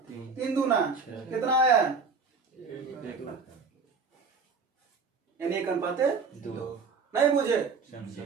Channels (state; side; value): quieter; left; 4.9 dB